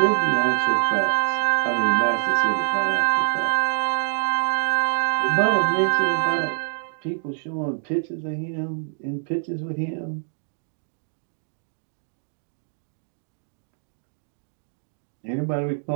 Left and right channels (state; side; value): silent; left; digital silence